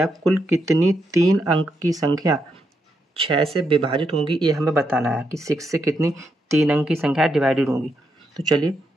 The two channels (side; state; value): both; normal; correlation 0.81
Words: कुल कितनी 3 अंक की संख्या 6 से विभाजित होंगी, ये हमें बताना है कि 6 से कितनी 3 अंक की संख्या डिवाइडेड होंगी। तो चलिए